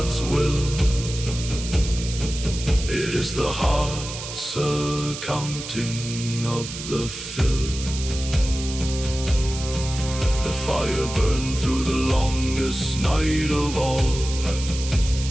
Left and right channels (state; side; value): noise; right; hiss, 9 dB below the sound